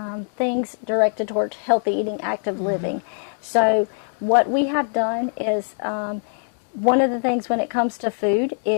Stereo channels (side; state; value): right; silent; digital silence